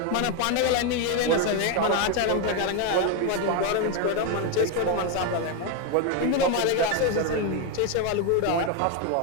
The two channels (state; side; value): different; both; correlation 0.02